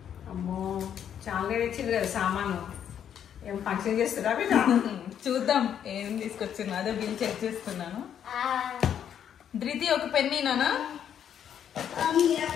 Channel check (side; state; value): right; quieter; 9.1 dB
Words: అమ్మో చాలా తెచ్చింది కదా సామాను. ఏం ఫంక్షన్ చేస్తారా బిడ్డ? చూద్దాం ఏం తీసుకొచ్చింది. అదే బిల్ చెక్ చేస్తున్నాను. ధృతి ఒక పెన్నీనా?